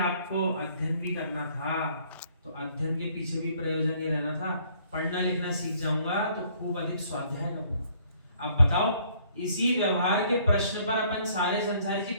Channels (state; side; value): inverted; both; correlation -0.62